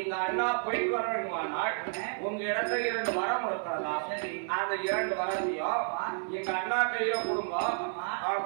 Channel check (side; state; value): left; silent; 57 dB below the other